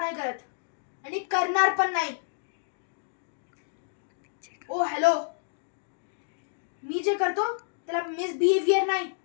करत आणि करणार पण नाही. ओ हॅलो, मी जे करतो त्याला मिसबिहेवियर नाही,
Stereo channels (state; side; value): silent; right; digital silence